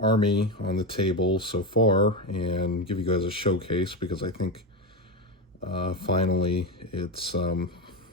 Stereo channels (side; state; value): both; normal; correlation 0.15